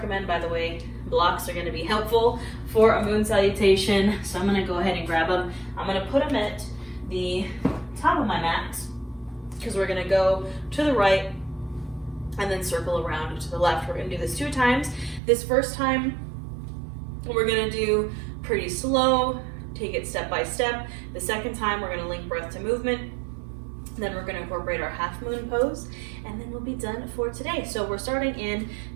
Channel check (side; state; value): left; drops out; at 15.2 s